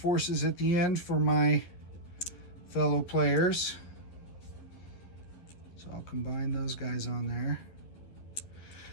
at the end for my fellow players. So I'll combine those guys on there.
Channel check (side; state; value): right; late; 12 ms